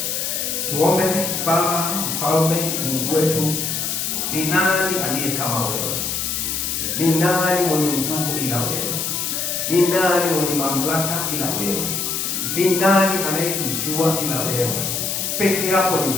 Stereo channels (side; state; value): left; noise; hiss, 1 dB below the sound